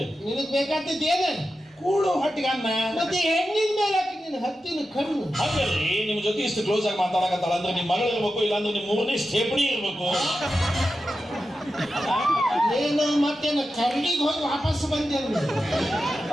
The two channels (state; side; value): normal; both; correlation 0.91